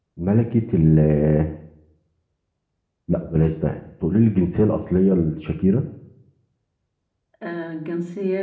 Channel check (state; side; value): identical; both; correlation 1.00